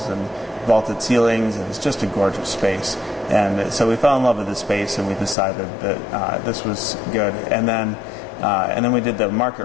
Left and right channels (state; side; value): drops out; right; at 5.4 s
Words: and vaulted ceilings, and it's just a gorgeous space. And so we fell in love with the space, and we decided that this was good. And then we did the